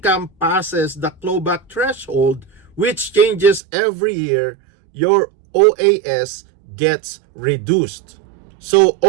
passes the clawback threshold, which changes every year, your OAS gets reduced. So,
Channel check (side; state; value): left; drops out; at 3.6 s